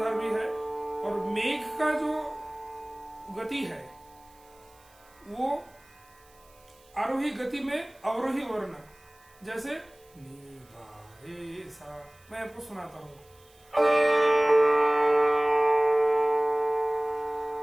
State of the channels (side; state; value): right; noise; hiss, 29 dB below the sound